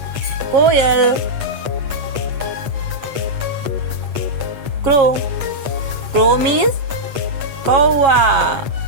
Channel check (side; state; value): left; late; 8.3 ms